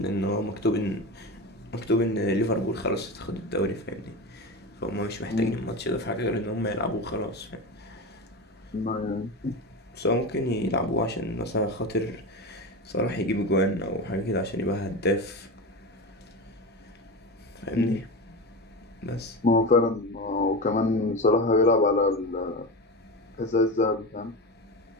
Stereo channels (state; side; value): normal; both; correlation 0.23